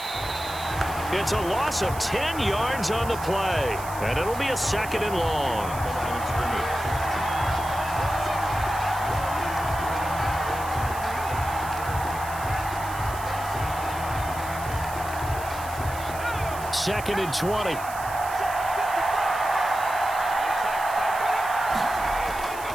It's a loss of 10 yards on the play, and it'll be a 2nd and long. Second and 20.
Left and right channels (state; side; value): noise; right; hiss, 14 dB below the sound